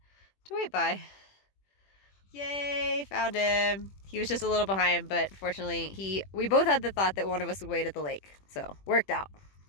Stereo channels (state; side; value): late; right; 21 ms